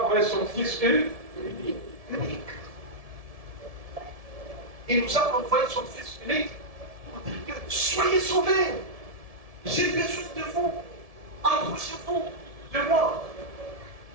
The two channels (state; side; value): late; left; 1.7 ms